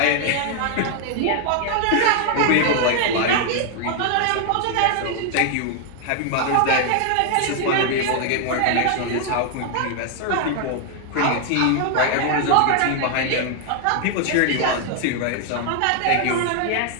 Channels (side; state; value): both; different; correlation 0.00